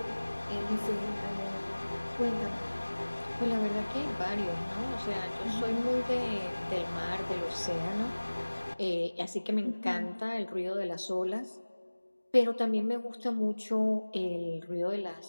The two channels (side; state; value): both; inverted; correlation -1.00